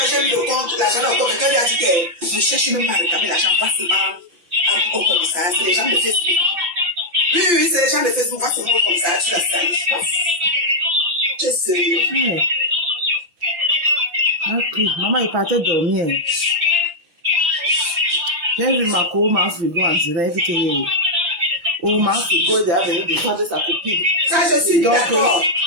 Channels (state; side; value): late; left; 5.8 ms